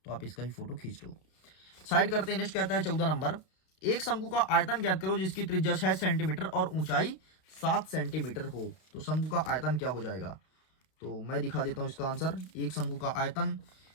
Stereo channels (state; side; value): late; right; 32 ms